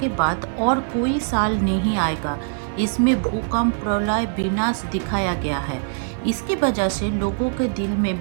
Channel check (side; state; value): left; silent; 64 dB below the other